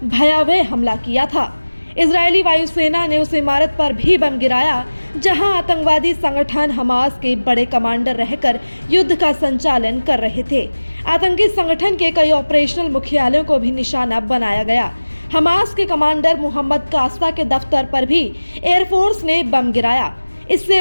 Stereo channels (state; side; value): inverted; both; correlation -1.00